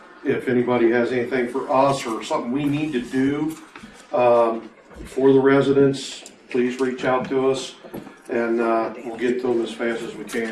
If anybody has anything for us or something we need to do, for the residents, please reach out to us and, we'll get to them as fast as we can.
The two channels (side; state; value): both; identical; correlation 1.00